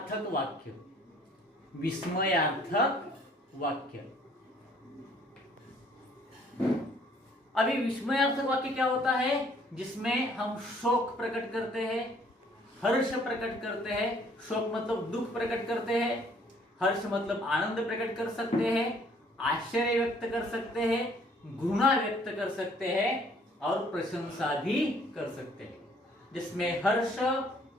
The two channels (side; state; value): both; normal; correlation 0.60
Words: वाक्य। विस्मयार्थक वाक्य। अभी विस्मयार्थक वाक्य क्या होता है? जिसमें हम शोक प्रकट करते हैं, हर्ष प्रकट करते हैं। शोक मतलब दुख प्रकट करते हैं, हर्ष मतलब आनंद प्रकट कर सकते हैं, आश्चर्य व्यक्त कर सकते हैं, घृणा व्यक्त कर सकते हैं और प्रशंसा भी कर सकते हैं। जिसमें हर्ष,